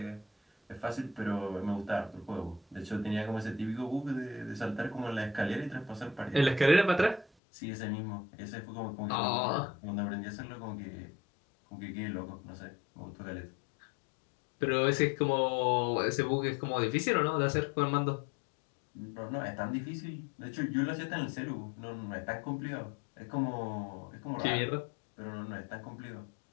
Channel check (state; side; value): drops out; right; at 7.2 s